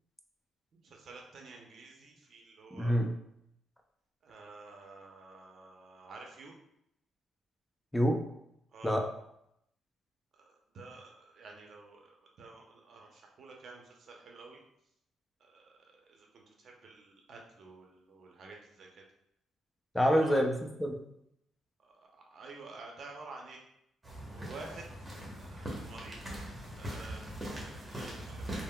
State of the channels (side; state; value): both; normal; correlation 0.89